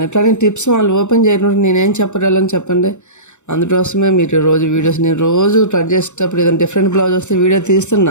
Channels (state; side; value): late; right; 0.84 ms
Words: కానీ టిప్స్ వాళ్ళు ఓపెన్ చేయడం నేనేం చెప్పగలను చెప్పండి. అందుకోసమే మీరు నేను రోజు కట్ చేసేటప్పుడు ఏదైనా డిఫరెంట్ బ్లౌజ్ వస్తే వీడియో